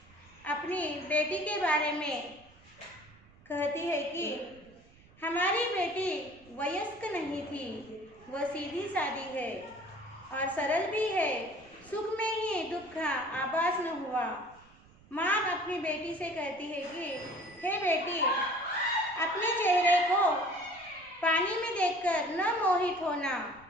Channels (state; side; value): noise; right; rumble, 26 dB below the sound